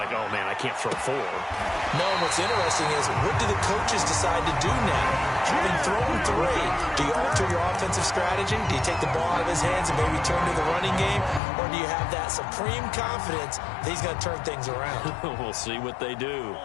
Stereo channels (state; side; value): drops out; right; at 11.4 s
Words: oh, man, I can't throw 4. No, what's interesting is, what do the coaches decide to do now? Having thrown 3, do you alter your offensive strategy? Do you take the ball out of his hands and maybe turn to the running game? Or do you have that supreme confidence that he's going to turn things around? We'll see what they do.